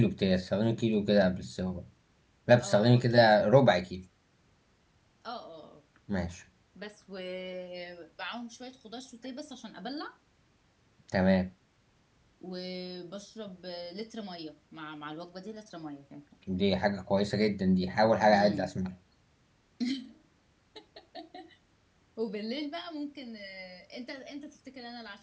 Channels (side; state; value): both; identical; correlation 1.00